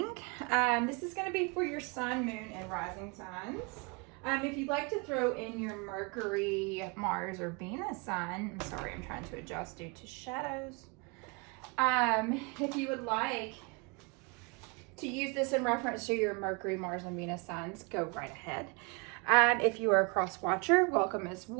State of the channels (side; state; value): left; quieter; 30.8 dB